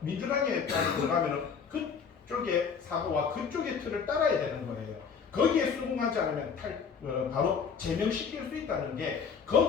민주당에 들어가면은 그쪽의 사고와 그쪽의 틀을 따라야 되는 거예요. 거기에 수긍하지 않으면 바로 제명시킬 수 있다는 게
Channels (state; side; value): quieter; right; 6.2 dB